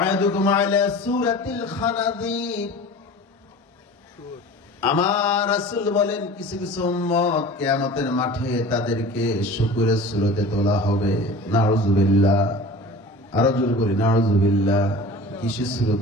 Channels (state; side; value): normal; both; correlation 0.39